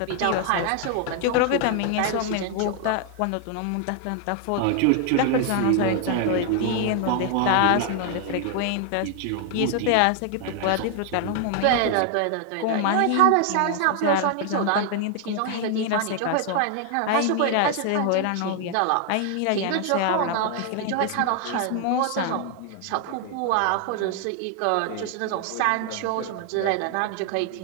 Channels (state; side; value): different; both; correlation 0.00